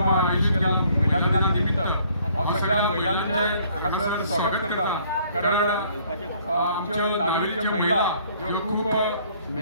आयोजीत केला महिला दिना निमित्त। हांव सगळ्या महिलांचे हांगासर स्वागत करता, कारण आमच्यो नागरीच्यो महिला ह्यो खूब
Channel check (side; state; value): both; inverted; correlation -0.61